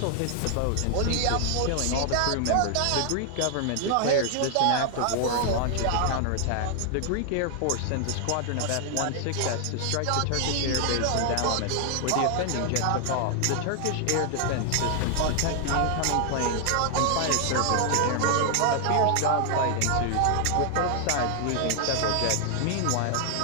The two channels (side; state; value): both; different; correlation 0.00